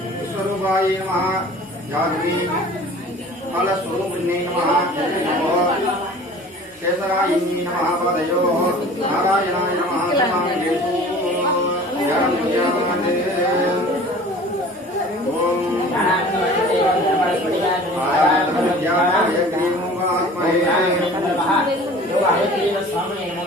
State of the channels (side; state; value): both; normal; correlation 0.44